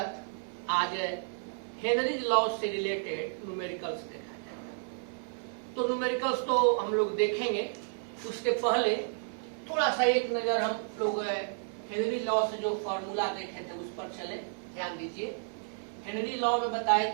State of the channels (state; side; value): silent; left; digital silence